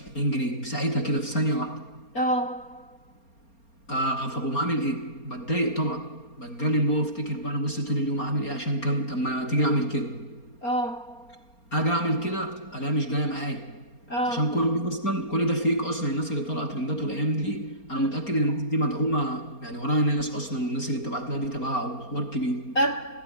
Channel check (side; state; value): right; late; 4.3 ms